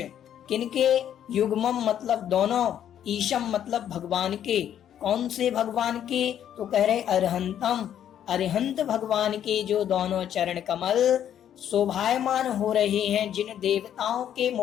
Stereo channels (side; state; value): right; quieter; 10.1 dB